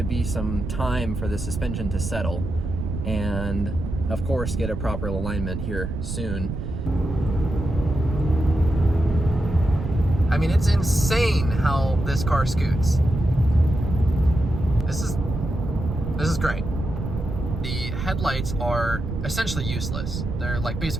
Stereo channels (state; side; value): noise; right; rumble, 5 dB below the sound